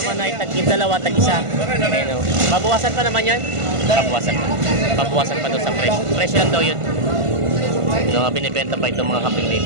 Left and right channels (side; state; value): left; late; 1.5 ms